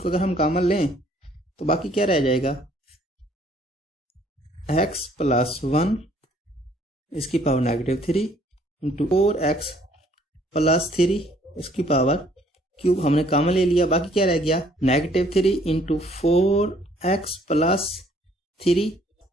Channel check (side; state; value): both; normal; correlation 0.62